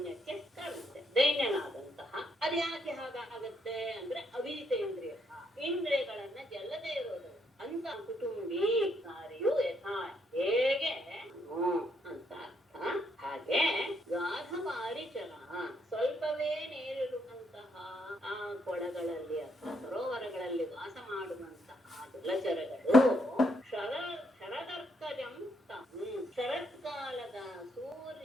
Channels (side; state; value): both; normal; correlation 0.74